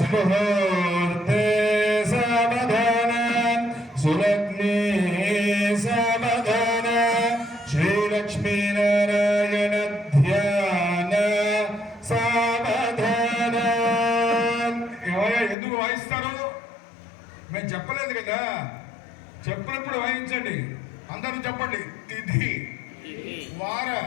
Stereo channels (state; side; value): drops out; right; at 15.6 s